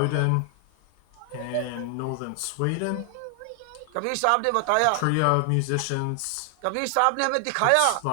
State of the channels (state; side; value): different; both; correlation 0.00